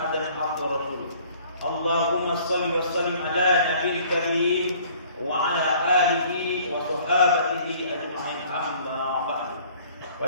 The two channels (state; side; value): inverted; both; correlation -0.54